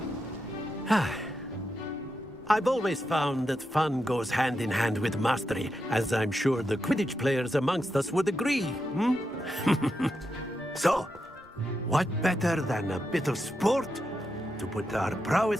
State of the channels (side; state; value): both; normal; correlation 0.86